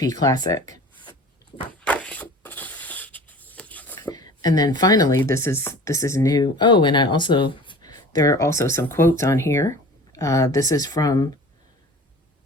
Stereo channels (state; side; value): normal; both; correlation 0.42